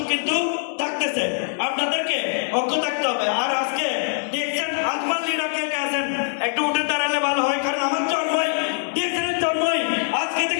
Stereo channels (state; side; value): silent; right; 55 dB below the other